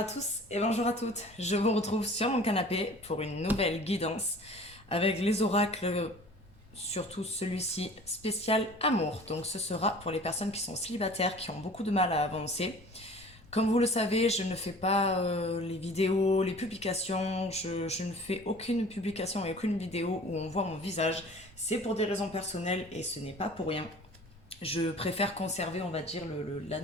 tous et bonjour à toutes. Je vous retrouve sur mon canapé pour une nouvelle guidance avec les oracles, surtout celui-ci spécial amour. Donc ce sera pour les personnes qui sont célibataires, qui ont beaucoup de mal à avancer. Comme vous le savez, je ne fais pas les vidéos, les publications, je ne fais aucune publication et aucune vidéo où on voit mon visage. C'est pour des raisons personnelles et ce n'est pas pour rien. Je préfère conserver, on va dire,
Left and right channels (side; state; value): both; normal; correlation 0.45